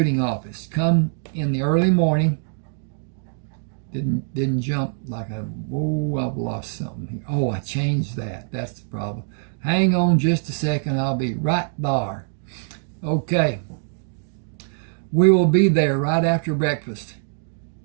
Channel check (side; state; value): left; silent; digital silence